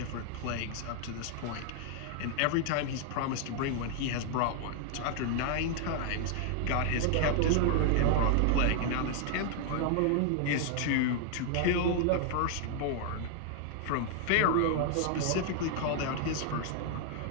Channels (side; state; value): both; different; correlation 0.00